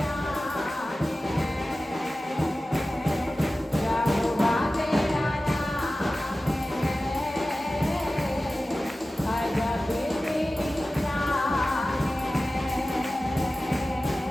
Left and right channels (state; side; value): normal; both; correlation 0.95